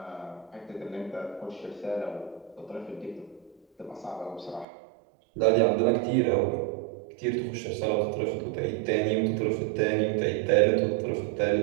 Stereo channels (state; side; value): drops out; left; at 4.7 s